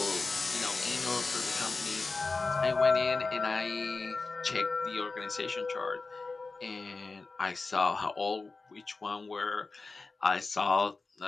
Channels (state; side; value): quieter; right; 3.8 dB